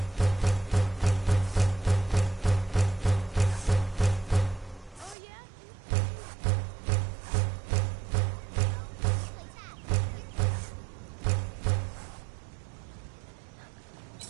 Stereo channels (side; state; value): left; drops out; at 5.2 s